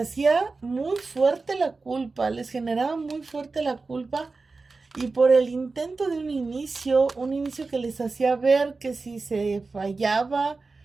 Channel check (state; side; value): quieter; left; 3.9 dB